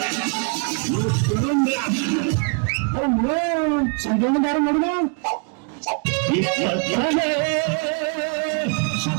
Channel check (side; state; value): left; quieter; 39.2 dB